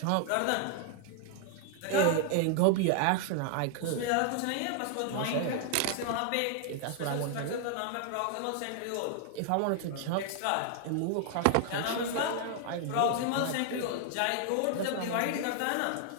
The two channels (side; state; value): both; different; correlation 0.00